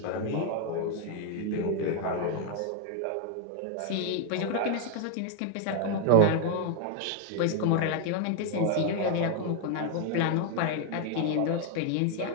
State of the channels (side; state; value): both; different; correlation 0.00